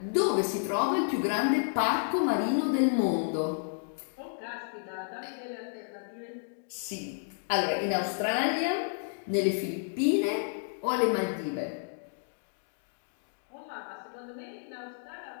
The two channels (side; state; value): right; silent; digital silence